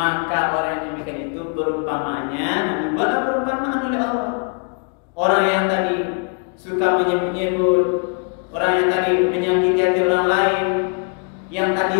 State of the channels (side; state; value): right; quieter; 39.8 dB